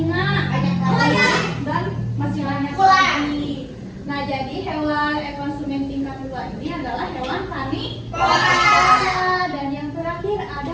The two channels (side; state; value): both; identical; correlation 1.00